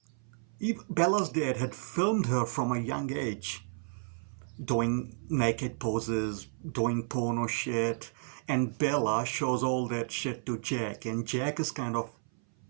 Bella's dad had filmed her from a young age, doing naked poses, doing porno shit, and Bella shows all that shit to Jack, and Jack is kind of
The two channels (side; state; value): left; silent; 57 dB below the other